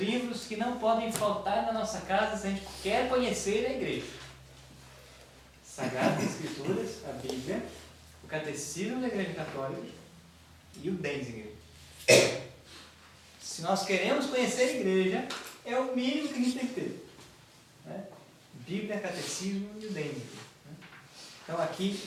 que não podem faltar na nossa casa se a gente quer conhecer a igreja: Sagradas Escrituras, a Bíblia, o Catecismo da Igreja Católica e o Denzinger. Se nós queremos conhecer a igreja, é o mínimo que a gente tem que ter, né? Bíblia, Catecismo e o Denzinger. Então aqui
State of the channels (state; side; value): identical; both; correlation 1.00